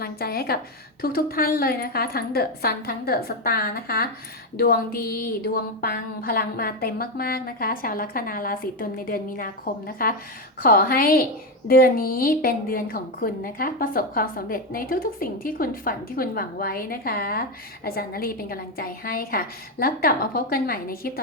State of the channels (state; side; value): normal; both; correlation 0.09